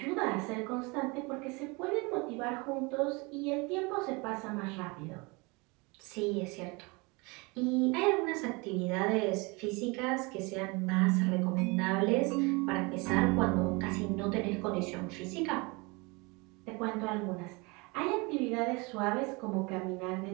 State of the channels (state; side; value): quieter; left; 27.4 dB